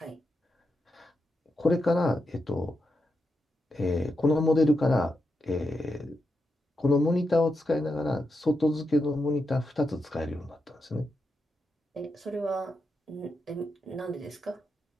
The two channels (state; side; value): normal; both; correlation 0.86